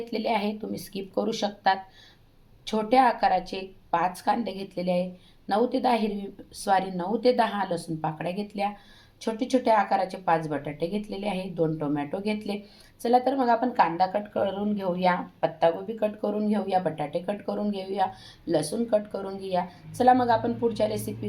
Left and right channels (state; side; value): identical; both; correlation 1.00